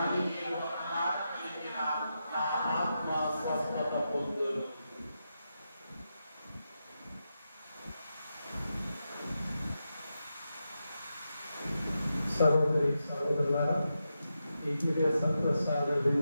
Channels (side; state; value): both; inverted; correlation -0.87